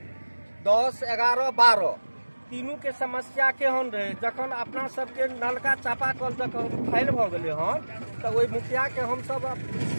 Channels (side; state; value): both; inverted; correlation -1.00